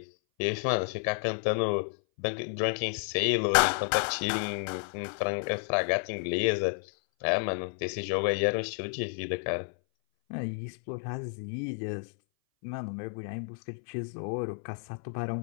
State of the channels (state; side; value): silent; right; 57 dB below the other